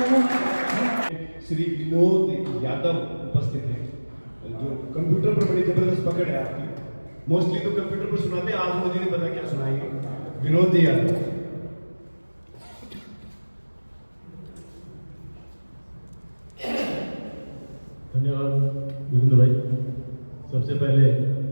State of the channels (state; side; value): inverted; both; correlation -1.00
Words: श्री विनोद यादव उपस्थित हैं, जो कंप्यूटर पर बड़ी जबरदस्त पकड़ है आपकी। मोस्टली तो कंप्यूटर पर सुनाते हैं, आज मुझे नहीं पता क्या सुनाएंगे। विनोद यादव। धन्यवाद वीरेंद्र भाई। सबसे पहले